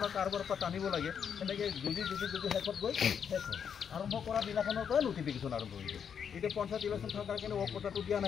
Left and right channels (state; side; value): quieter; right; 7.5 dB